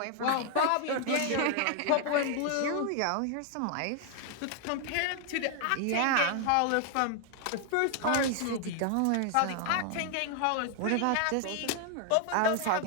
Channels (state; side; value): different; both; correlation 0.00